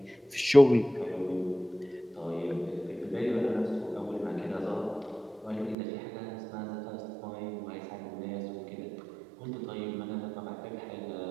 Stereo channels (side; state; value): left; drops out; at 5.8 s